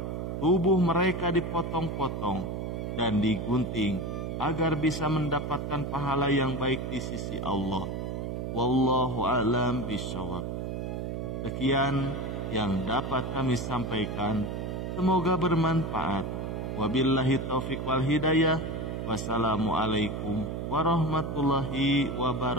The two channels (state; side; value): noise; right; hum, 4 dB below the sound